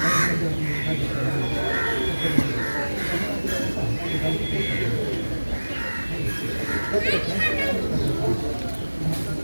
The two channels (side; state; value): both; inverted; correlation -1.00